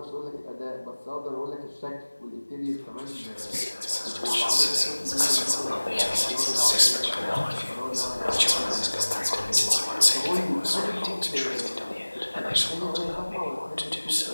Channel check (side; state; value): both; inverted; correlation -1.00